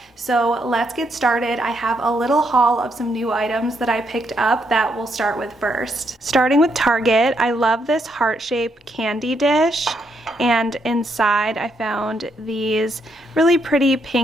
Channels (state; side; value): normal; both; correlation 0.76